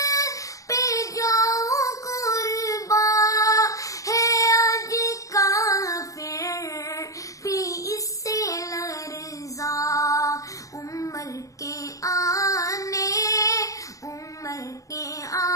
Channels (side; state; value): right; late; 0.16 ms